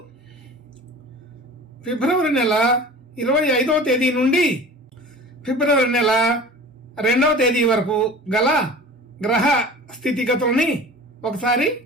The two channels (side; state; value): both; normal; correlation 0.39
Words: ఫిబ్రవరి నెల 25వ తేదీ నుండి ఫిబ్రవరి నెల 2వ తేదీ వరకు గల గ్రహ స్థితిగతుల్ని ఒకసారి